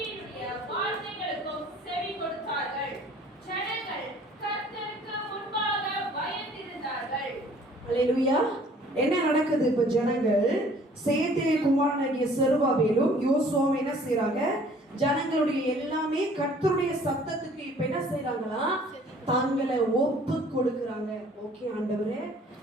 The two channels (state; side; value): normal; both; correlation 0.54